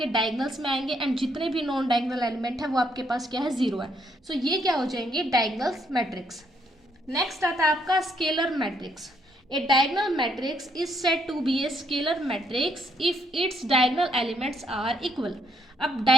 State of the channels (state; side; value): normal; both; correlation 0.72